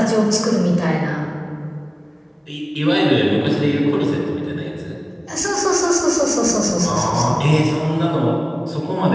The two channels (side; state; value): both; identical; correlation 1.00